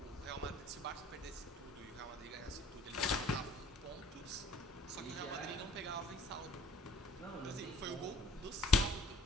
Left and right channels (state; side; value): normal; both; correlation 0.54